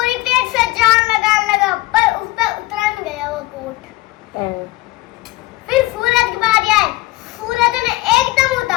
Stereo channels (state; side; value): quieter; right; 19.9 dB